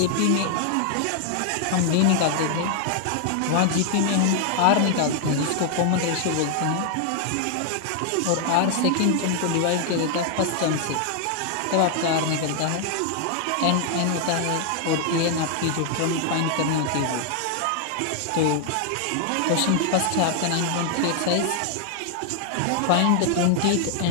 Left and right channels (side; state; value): both; different; correlation 0.00